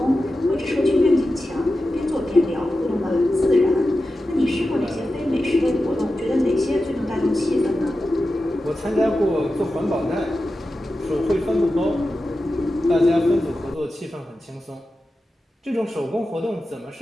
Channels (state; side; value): normal; both; correlation 0.92